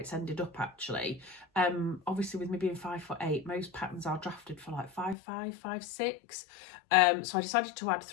ended up actually. Obviously with me being 5'8", most patterns are drafted for like 5'5", 5'6", so I decided to add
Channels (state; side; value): drops out; right; at 5.2 s